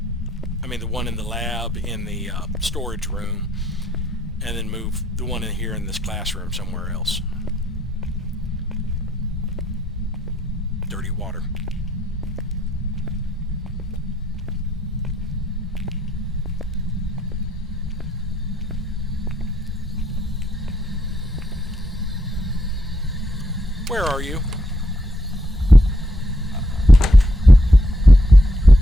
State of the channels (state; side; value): normal; both; correlation 0.76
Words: the one in the lab in the storage room, and then move the one in here in this classroom somewhere else. Dirty water. Where are you?